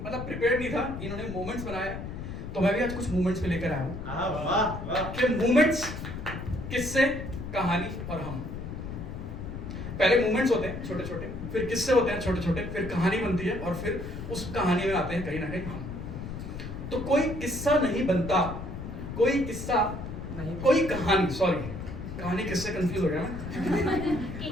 मतलब प्रिपेयर्ड नहीं था, इन्होंने मोमेंट्स बनाया तो मैं भी आज कुछ मोमेंट्स पे लेकर आया हूँ कि मोमेंट्स, किस्से, कहानी और हम। पहले मोमेंट्स होते हैं छोटे छोटे, फिर किस्से होते हैं छोटे छोटे, फिर कहानी बनती है और फिर उस कहानी में आते हैं कहीं ना कहीं हम। तो कोई किस्सा नहीं बनता, कोई किस्सा नहीं, कोई कहानी, सॉरी कहानी किससे कंफ्यूज हो गया मैं।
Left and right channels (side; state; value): left; noise; rumble, 8 dB below the sound